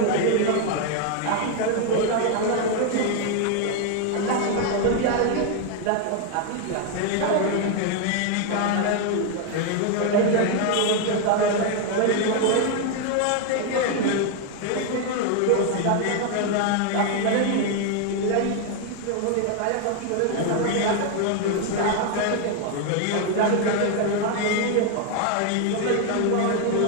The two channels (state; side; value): different; both; correlation 0.01